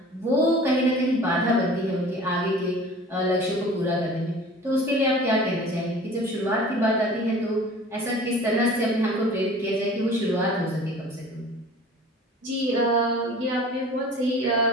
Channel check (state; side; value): normal; both; correlation 0.44